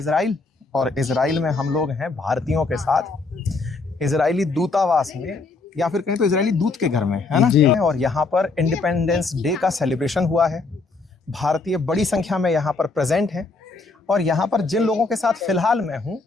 और इजराइल में हम लोग हैं भारतीयों के साथ इजरायली दूतावास में, या फिर कहीं तो इजरायली दूत के घर में, है ना। और यहाँ पर इंडिपेंडेंस डे का सेलिब्रेशन हुआ है। भारतीय बड़ी संख्या में यहाँ पर प्रेजेंट हैं। और यहाँ पर जिन लोगों के साथ फिलहाल मैं हूँ,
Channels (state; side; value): quieter; right; 3.8 dB